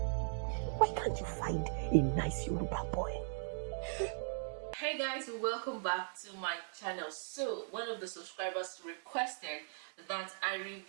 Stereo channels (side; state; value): left; silent; digital silence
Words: Why can't you find a nice Yoruba boy? Hey guys, welcome back to my channel. So one of the subscribers requested that I